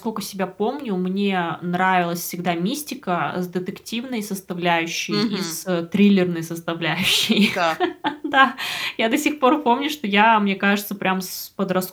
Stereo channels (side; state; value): both; identical; correlation 1.00